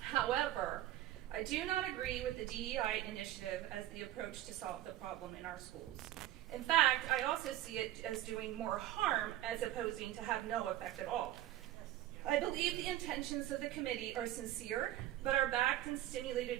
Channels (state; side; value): quieter; left; 14.0 dB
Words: I do not agree with the DEI initiative as the approach to solve the problem in our schools. In fact, I also see it as doing more harm as opposing to have no effect at all. I believe the intentions of the committee are sincere, but are backed and